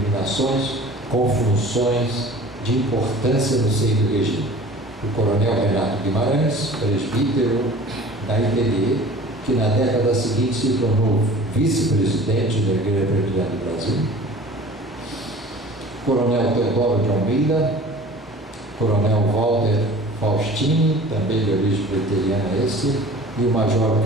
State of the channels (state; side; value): normal; both; correlation 0.44